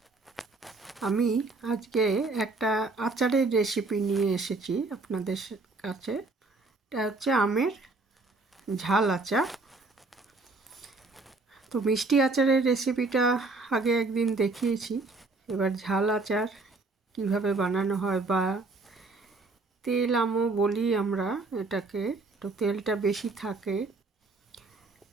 আমি আজকে একটা আচারের রেসিপি নিয়ে এসেছি আপনাদের কাছে। এটা হচ্ছে আমের ঝাল আচার। তো মিষ্টি আচারের রেসিপিটা আগে একদিন দেখিয়েছি। এবার ঝাল আচার কিভাবে বানানো হয়, বা তেল আমও বলি আমরা এটাকে, তো তেলটা বেশি থাকে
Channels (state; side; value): quieter; left; 3.5 dB